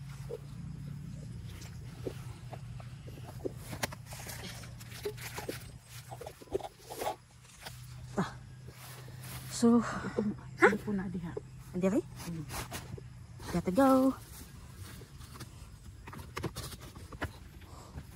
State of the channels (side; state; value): both; identical; correlation 1.00